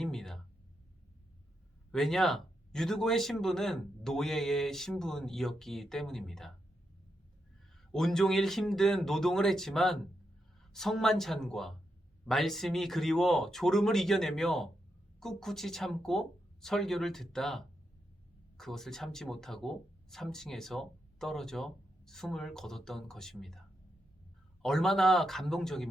왜냐? 유두고의 신분은 노예의 신분이었기 때문입니다. 온종일 힘든 노동을 했지만 성만찬과 말씀이 그리워 졸음을 이겨내며 꿋꿋이 참고 설교를 듣다 그것을 참지 못하고 3층에서 떨어져 숨을 거뒀던 것입니다. 얼마나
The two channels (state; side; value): normal; both; correlation 0.84